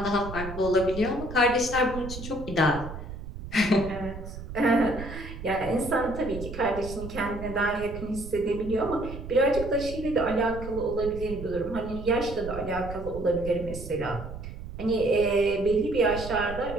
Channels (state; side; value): noise; right; rumble, 10 dB below the sound